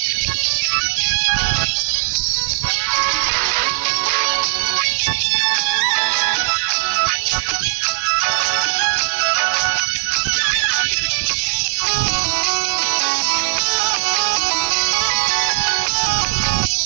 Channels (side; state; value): left; silent; digital silence